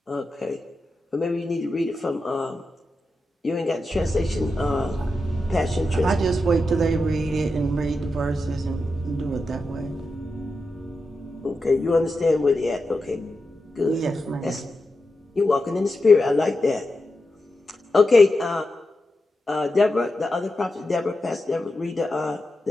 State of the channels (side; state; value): both; normal; correlation 0.89